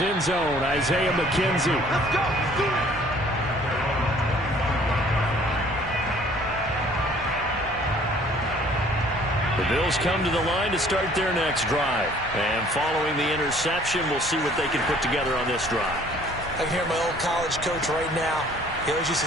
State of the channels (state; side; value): normal; both; correlation 0.56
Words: zone, Isaiah McKenzie. Let's go. Let's do it. The Bills come to the line to start their next drive. And following the interception, we'll see what they can put together on this drive. I can hear my old college coach right now. He always used